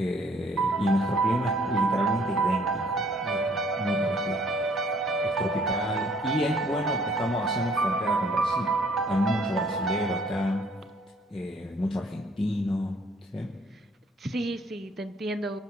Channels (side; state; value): both; normal; correlation 0.60